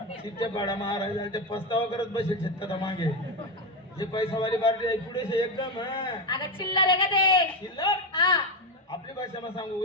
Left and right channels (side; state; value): both; normal; correlation 0.12